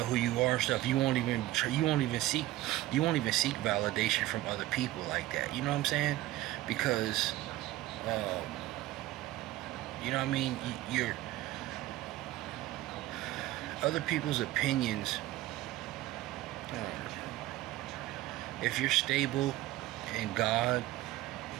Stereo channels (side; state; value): left; quieter; 16.1 dB